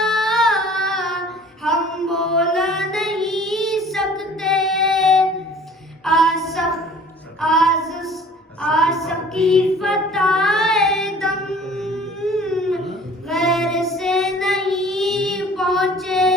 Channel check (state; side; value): normal; both; correlation 0.49